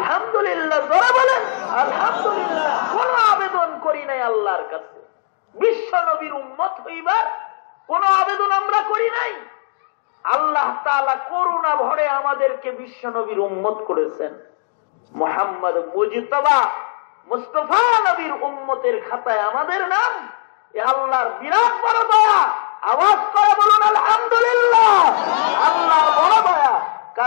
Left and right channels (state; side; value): silent; right; digital silence